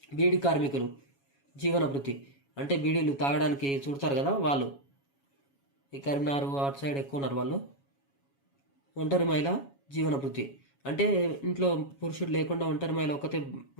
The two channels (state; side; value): late; right; 7.2 ms